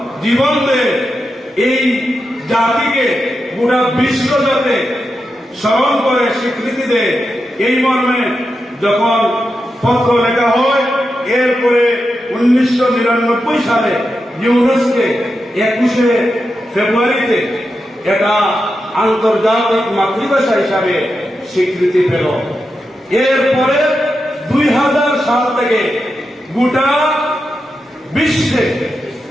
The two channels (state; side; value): normal; both; correlation 0.88